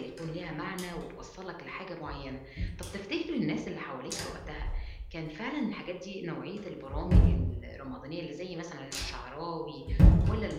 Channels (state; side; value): identical; both; correlation 1.00